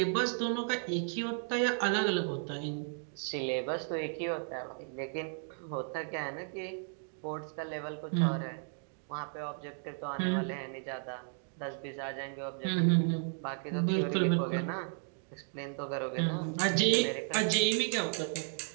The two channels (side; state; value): left; silent; 55 dB below the other